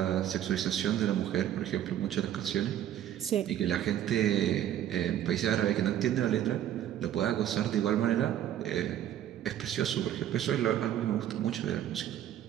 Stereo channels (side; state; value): left; quieter; 11.3 dB